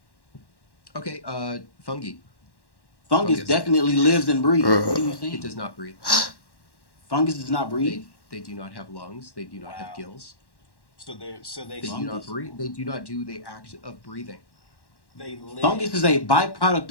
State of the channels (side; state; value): right; late; 1.1 ms